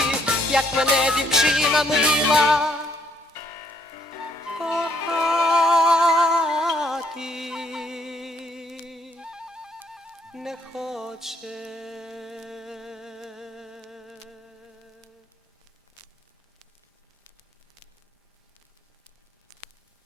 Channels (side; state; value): both; normal; correlation 0.69